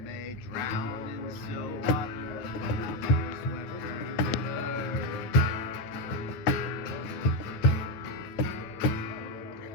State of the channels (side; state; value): right; late; 9.3 ms